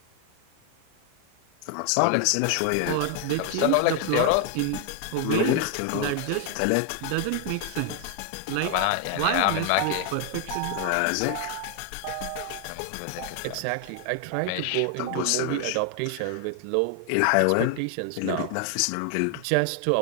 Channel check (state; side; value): different; both; correlation 0.00